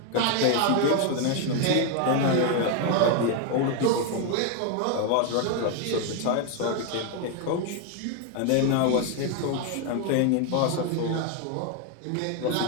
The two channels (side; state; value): both; different; correlation 0.01